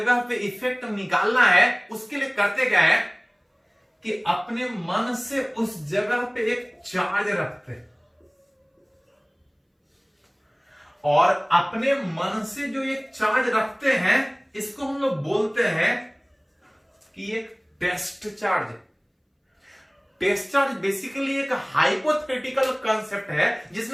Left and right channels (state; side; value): identical; both; correlation 1.00